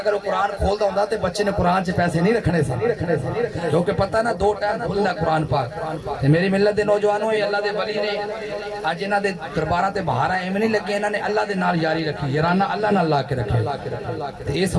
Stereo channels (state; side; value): identical; both; correlation 1.00